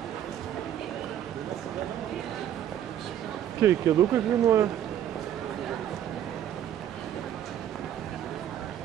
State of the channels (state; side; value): quieter; left; 10.7 dB